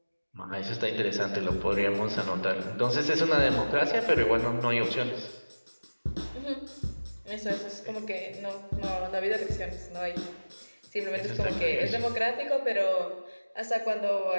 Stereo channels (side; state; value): both; inverted; correlation -1.00